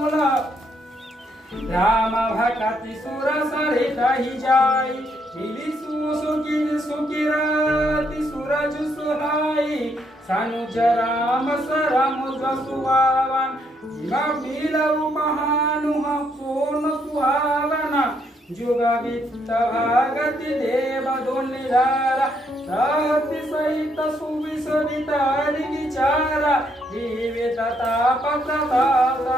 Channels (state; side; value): normal; both; correlation 0.73